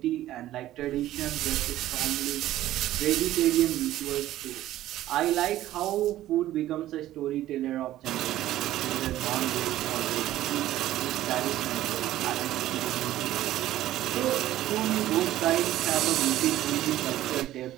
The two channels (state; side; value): quieter; left; 14.1 dB